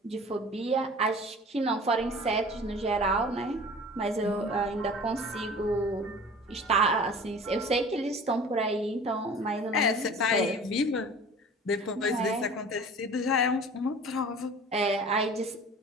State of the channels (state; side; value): normal; both; correlation 0.43